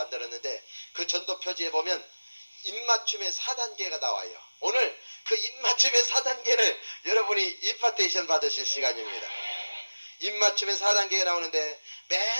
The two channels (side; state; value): both; inverted; correlation -1.00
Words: 그 전도 표지에 보면 입맞춤의 4단계가 나와요. 오늘 그 입맞춤의 4단계를 여러분이 임파테이션 받으실 시간입니다. 입맞춤의 4단계가 나오는데